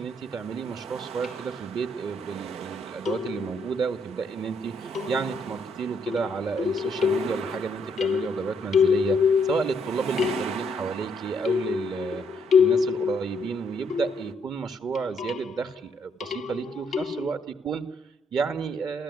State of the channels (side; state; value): both; normal; correlation 0.72